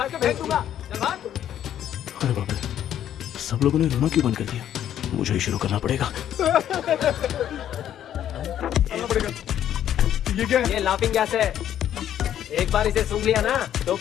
के फेंक दूंगा। चल भाग। अरे बाप रे, सब लोगों ने रोना क्यों बंद कर दिया? मुझे ही शुरू करना पड़ेगा। ये क्या है? ये लाफिंग गैस है। एक बार इसे सूंघ लिया ना तो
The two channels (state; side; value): quieter; right; 10.8 dB